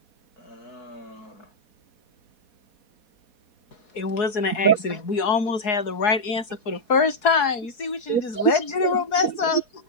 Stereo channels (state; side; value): late; right; 4.7 ms